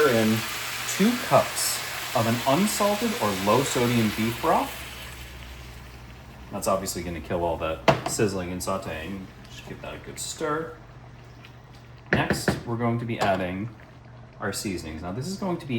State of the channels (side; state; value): both; identical; correlation 1.00